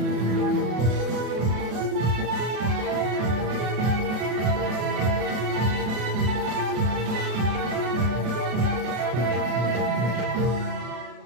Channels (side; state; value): left; late; 32 ms